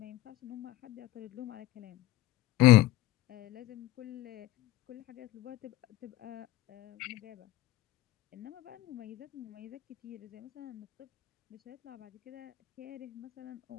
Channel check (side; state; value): right; quieter; 16.2 dB